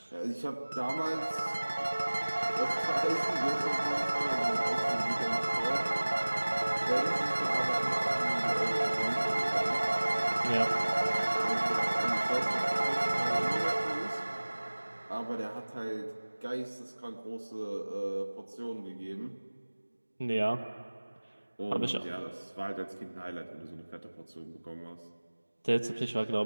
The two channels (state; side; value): inverted; both; correlation -1.00